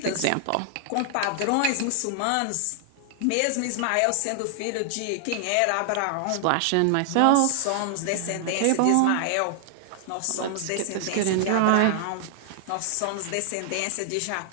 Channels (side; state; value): both; different; correlation 0.00